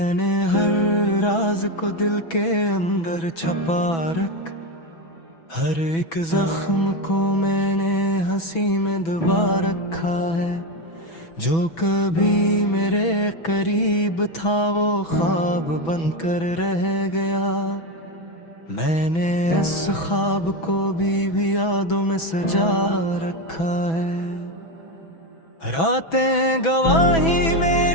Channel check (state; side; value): late; right; 6.1 ms